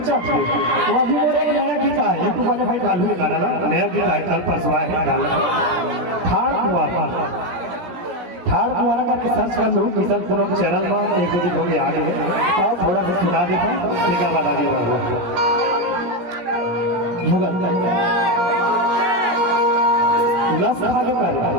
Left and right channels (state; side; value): late; left; 16 ms